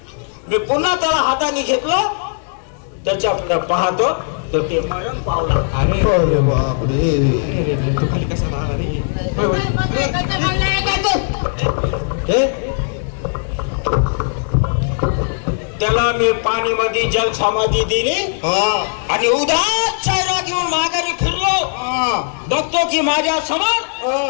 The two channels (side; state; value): right; silent; digital silence